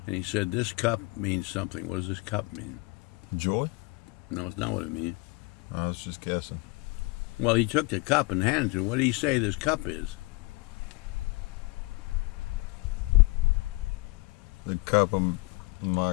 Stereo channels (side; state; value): right; quieter; 24.4 dB